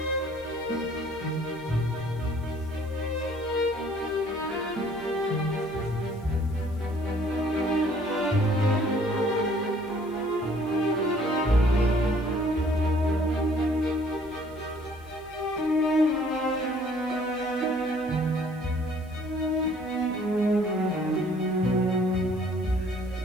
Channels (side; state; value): left; noise; hiss, 29 dB below the sound